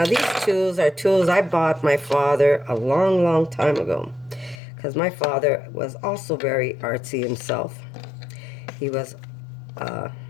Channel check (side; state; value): right; drops out; at 4.6 s